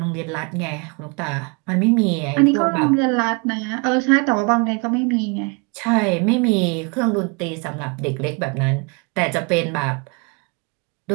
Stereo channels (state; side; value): quieter; left; 31.7 dB